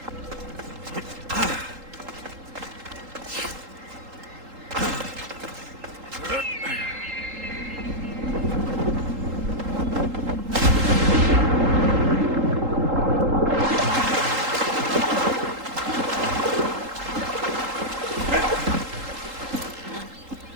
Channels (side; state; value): left; late; 3.8 ms